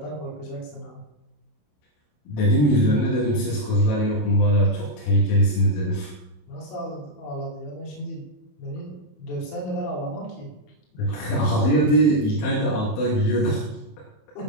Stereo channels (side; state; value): right; late; 27 ms